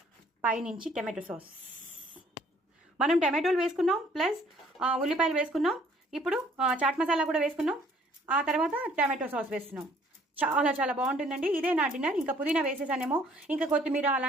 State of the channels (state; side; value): normal; both; correlation 0.60